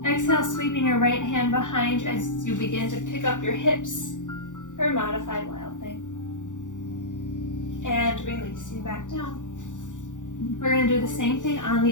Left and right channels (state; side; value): late; right; 0.86 ms